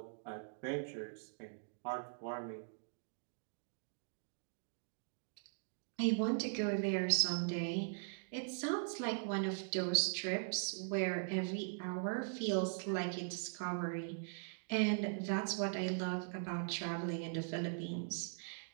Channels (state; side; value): silent; left; digital silence